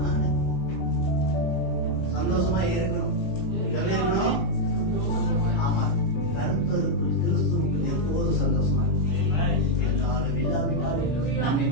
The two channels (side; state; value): right; late; 17 ms